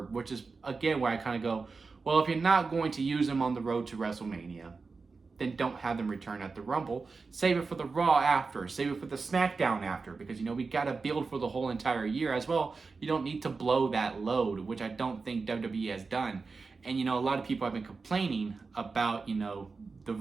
which is, again, where I kind of go, well, if you're not going to use them on the road to WrestleMania, then don't have them return at the Rumble. Save it for the Raw after, save it for the SmackDown after, because, we got to build for the whole entire year as well. You don't need to blow that load, which I don't think WWE has done. And, a lot of people have been complaining about, the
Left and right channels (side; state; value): left; quieter; 4.4 dB